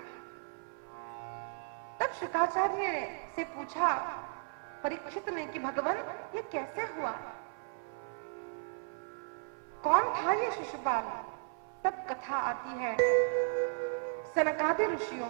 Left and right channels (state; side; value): silent; left; 54 dB below the other